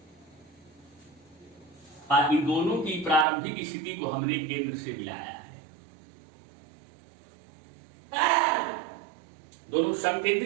और इन दोनों की प्रारंभिक स्थिति को हमने केंद्र से मिलाया है। दोनों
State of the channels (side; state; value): left; drops out; at 3.2 s